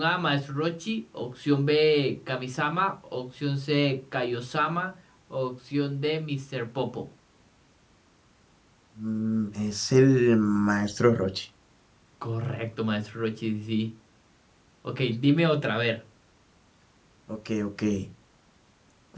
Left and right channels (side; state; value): both; identical; correlation 1.00